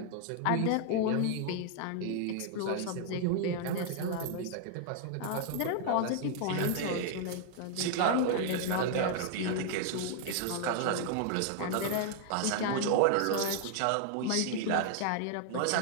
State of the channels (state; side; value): different; both; correlation 0.00